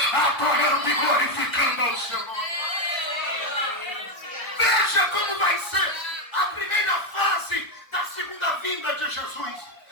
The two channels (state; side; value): late; right; 1.3 ms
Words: adorando e glorificando ao seu nome. Veja como vai ser a primeira fase vinda de Jesus.